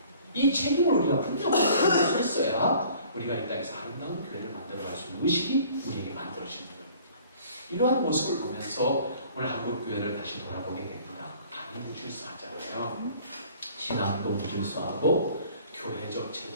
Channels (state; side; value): inverted; both; correlation -0.52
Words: 이 책임을 우리가 분명히 할 수 있어야 우리가 이 땅에서 아름다운 교회를 만들어 갈 수 있는 의식이 우리에게 만들어지는 겁니다. 이러한 모습을 보면서 오늘 한국 교회를 다시 돌아보게 됩니다. 많이 무질서하잖아요. 신앙도 무질서하고 교회적